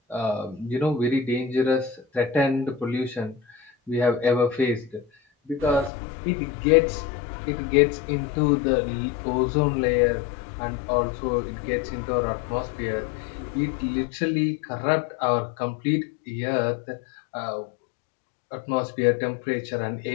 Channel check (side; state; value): right; drops out; at 5.9 s